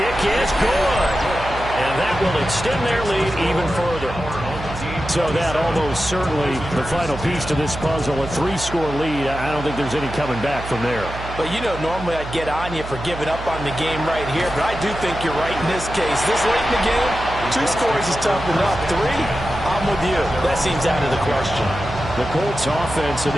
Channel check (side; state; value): right; noise; hum, 10 dB below the sound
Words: is good. And that will extend their lead even further. So that almost certainly the final piece to this puzzle, a 3-score lead. I don't think there's any coming back from there. But, you know, normally I'd get on you for giving up on the game right here, but I do think you're right in this case. This late in the game, 2 scores is tough enough. 3, I'm with you. That seems out of the question. The Colts offense and